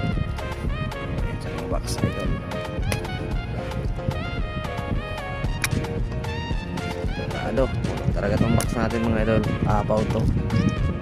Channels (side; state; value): both; identical; correlation 1.00